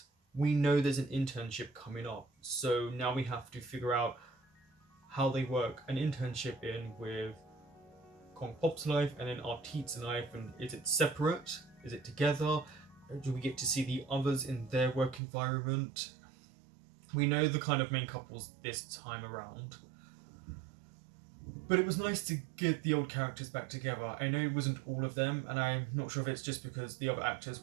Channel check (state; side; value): drops out; left; at 15.2 s